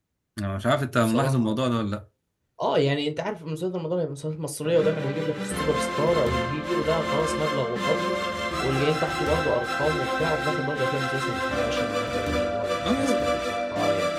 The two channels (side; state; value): both; identical; correlation 1.00